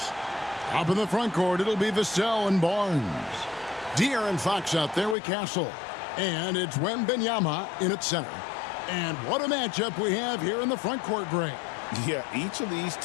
up in the front court, it'll be Vassell and Barnes. De'Aaron Fox out there with Castle. And it's Wembanyama in at center. And what a matchup we have here in the front court, Greg. Yeah, each of these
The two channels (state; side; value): drops out; right; at 5.2 s